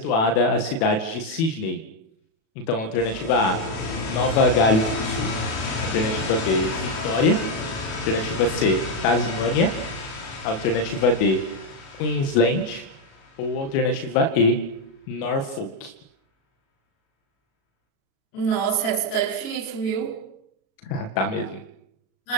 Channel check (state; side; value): late; right; 37 ms